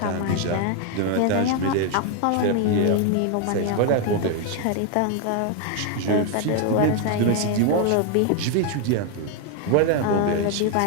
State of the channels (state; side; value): different; both; correlation 0.01